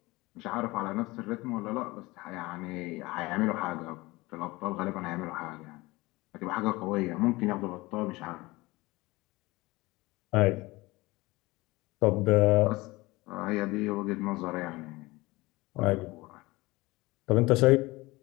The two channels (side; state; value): right; quieter; 21.5 dB